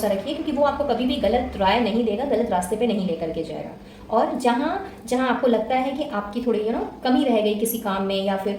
रखिए, क्योंकि वो आपको कभी भी गलत राय नहीं देगा, गलत रास्ते पे नहीं लेकर के जाएगा। और जहाँ जहाँ आपको लगता है कि आपकी थोड़ी कमी रह गई किसी काम में या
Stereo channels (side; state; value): both; identical; correlation 1.00